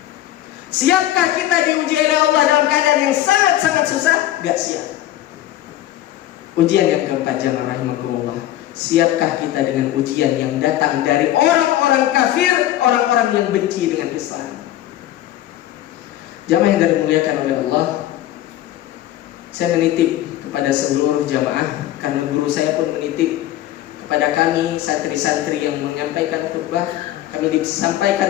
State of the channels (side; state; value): right; quieter; 13.5 dB